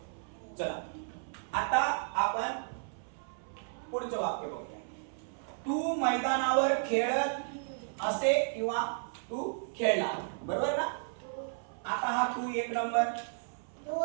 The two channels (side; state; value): left; silent; 55 dB below the other